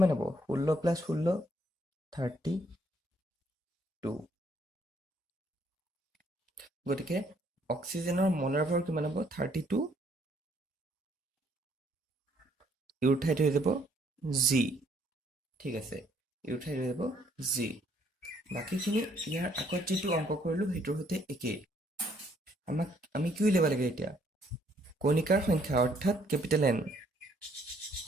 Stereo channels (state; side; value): normal; both; correlation 0.67